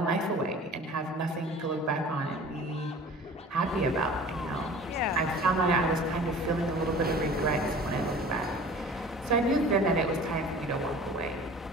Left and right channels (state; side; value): normal; both; correlation 0.44